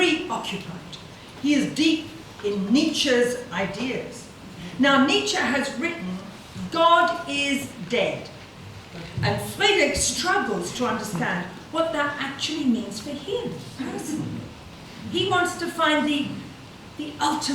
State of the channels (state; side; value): identical; both; correlation 1.00